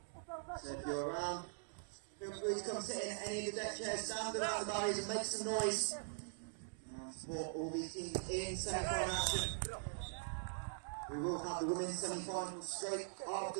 So if you're around, feel free to come sit in any of the deck chairs, stand around the barriers and make some noise. Support all these teams in semi-final action. We will have the women's semi-finals straight after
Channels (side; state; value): left; silent; digital silence